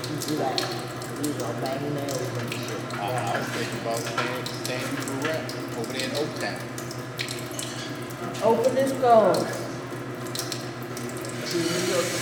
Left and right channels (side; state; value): both; identical; correlation 1.00